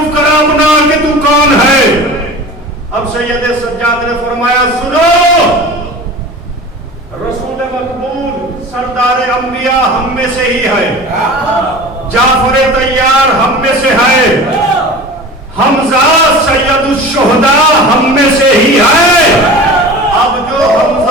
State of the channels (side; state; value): both; normal; correlation 0.37